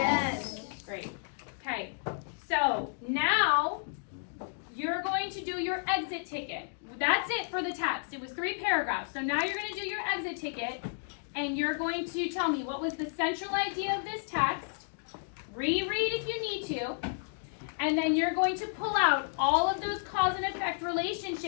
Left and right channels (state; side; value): silent; right; digital silence